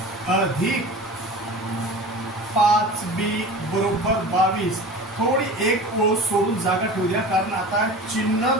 अधिक 5b बरोबर 22. थोडी एक ओळ सोडून जागा ठेवू द्या कारण आता चिन्ह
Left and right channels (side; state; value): both; normal; correlation 0.36